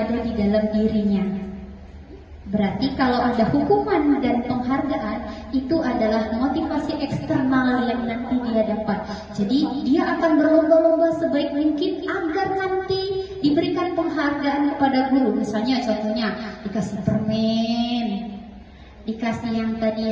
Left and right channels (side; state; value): both; identical; correlation 1.00